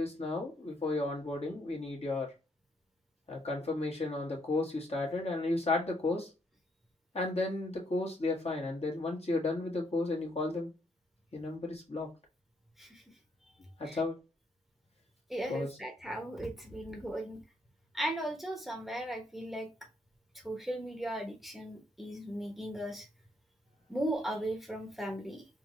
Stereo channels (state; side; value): normal; both; correlation 0.72